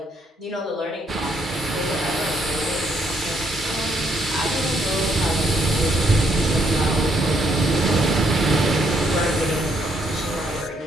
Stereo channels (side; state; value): both; normal; correlation 0.72